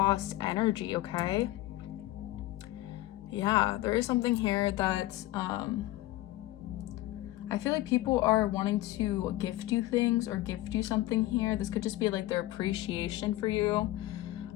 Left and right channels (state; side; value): quieter; right; 16.7 dB